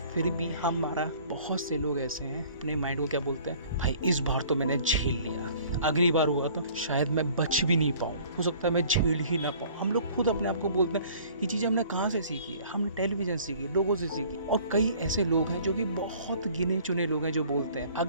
फिर भी हमारा बहुत से लोग ऐसे हैं, अपने माइंड को क्या बोलते हैं, भाई इस बार तो मैंने झेल लिया, अगली बार हुआ तो शायद मैं बच भी नहीं पाऊँ, हो सकता है मैं झेल ही ना पाऊँ। हम लोग खुद अपने आप को बोलते हैं। ये चीज़ें हमने कहाँ से सीखी है? हमने टेलीविजन सीखी, लोगों से सीखी। और कई ऐसे लोग हैं जो कि बहुत गिने चुने लोग हैं जो बोलते हैं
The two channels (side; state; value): both; inverted; correlation -0.52